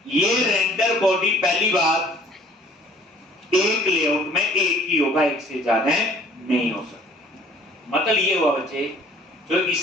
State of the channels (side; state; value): both; normal; correlation 0.54